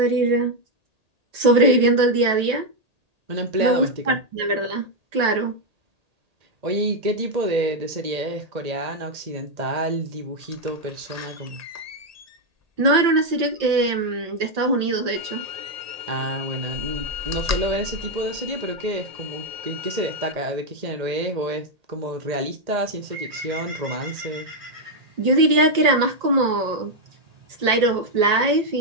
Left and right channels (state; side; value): late; left; 1.8 ms